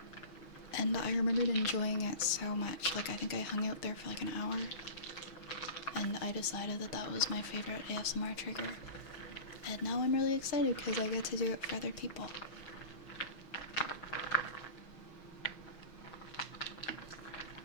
And I remembered enjoying it so much. Like, I think I hung out there for like an hour. And I decided that that was my favorite ASMR trigger. And now I'm really excited because I get to do it for other people.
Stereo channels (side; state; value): right; late; 6.3 ms